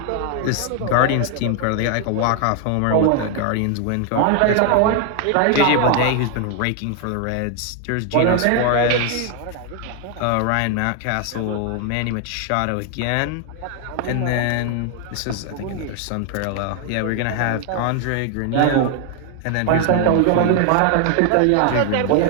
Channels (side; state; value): both; different; correlation 0.00